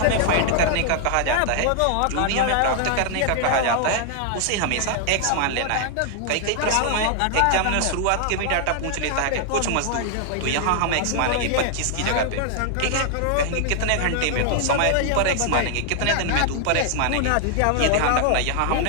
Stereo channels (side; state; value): both; different; correlation 0.00